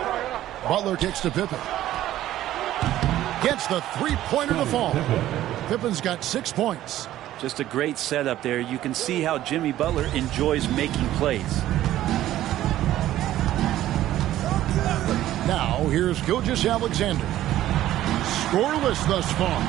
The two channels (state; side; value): quieter; left; 13.6 dB